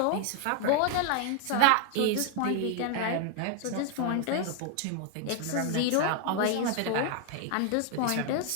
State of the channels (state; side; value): different; both; correlation 0.00